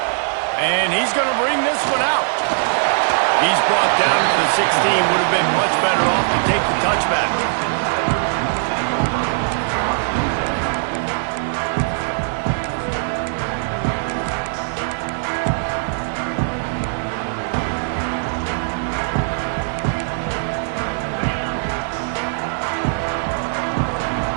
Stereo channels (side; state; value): left; silent; 65 dB below the other